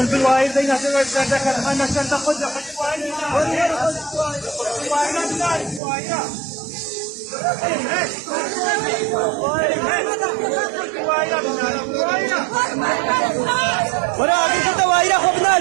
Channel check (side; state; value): left; drops out; at 5.8 s